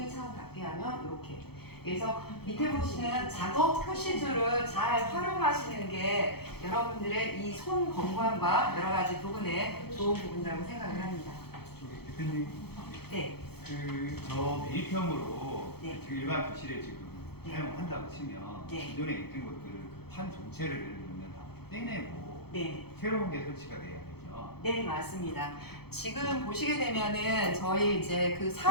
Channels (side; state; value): right; late; 0.96 ms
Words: 창을 닫게 하면 이렇게. 그래서 밑에 보시는 작업 표시줄을 잘 활용하시는 게 여러분들의 이 손 건강과 여러 가지 부분에 좋은 부분이라고 생각을 합니다. 대표님, 네. 저 매입형으로 네. 지금 일반 교실에 지금 네. 사용한다고 치면 네. 기존에 있던 것들을 그 판 전체를 예를 들면 다 떼내고 네. 새로운 게 설치가 돼야 되죠. 네, 맞습니다. 지금 보시게 되면은 저희 이제 그